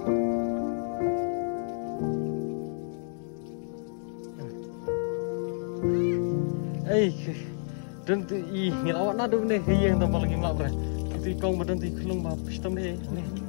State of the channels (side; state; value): right; silent; digital silence